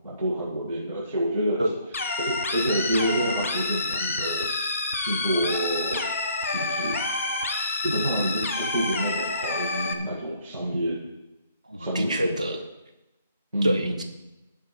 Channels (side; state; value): both; inverted; correlation -0.64